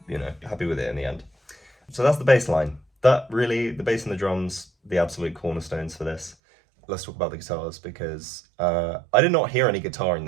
you know, happy with it in the end. So that's the bass line. That really, the bass and the drums, the absolute cornerstones for this. Let's talk about the guitars, because I did not hear any guitar in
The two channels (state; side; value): drops out; left; at 6.4 s